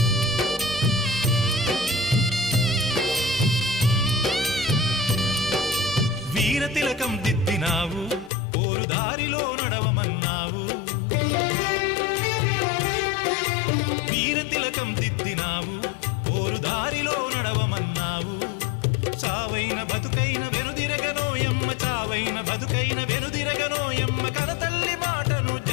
వీర తిలకం దిద్దినావు పోరు దారిలో నడవమన్నావు వీర తిలకం దిద్దినావు పోరు దారిలో నడవమన్నావు చావైన బతుకైన వెనుదిరగనోయమ్మ చావైన బతుకైన వెనుదిరగనోయమ్మ కనతల్లి మాటను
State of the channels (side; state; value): right; drops out; at 8.3 s